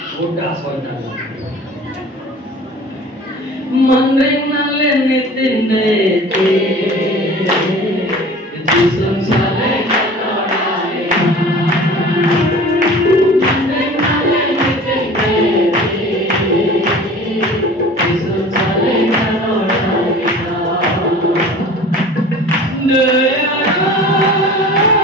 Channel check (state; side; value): normal; both; correlation 0.42